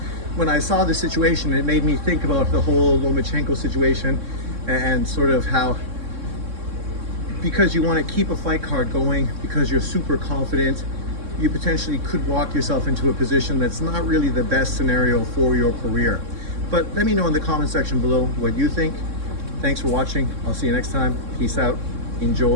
when I saw the situation, it made me think about the whole Lomachenko situation and sort of how, because you want to keep a fight card going, because you're super confident, you potentially could walk yourself into a position that's not really the best scenario for your career. But let me know in the comment section below what you think. Thanks for watching. I'll see you next time. Peace out.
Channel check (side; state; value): left; late; 3.6 ms